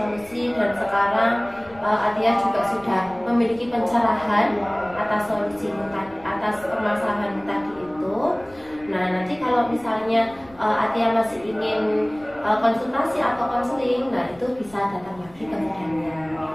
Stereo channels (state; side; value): noise; left; rumble, 25 dB below the sound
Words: dan sekarang Atia juga sudah memiliki pencerahan atas solusi tadi, atas permasalahan tadi itu. Nah, nanti kalau misalnya Atia masih ingin konsultasi atau konseling, nah itu bisa datang lagi ke Bu Daniar,